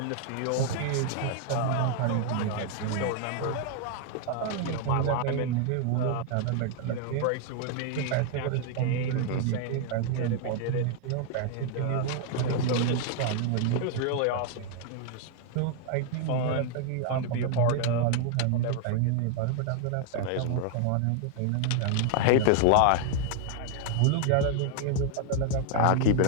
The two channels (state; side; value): different; both; correlation 0.00